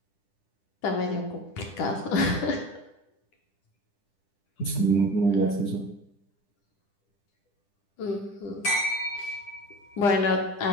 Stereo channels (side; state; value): right; late; 10 ms